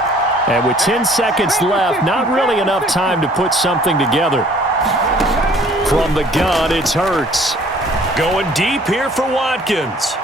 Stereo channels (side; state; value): both; normal; correlation 0.56